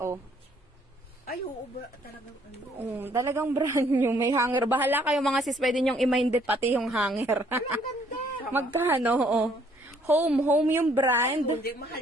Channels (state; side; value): normal; both; correlation 0.64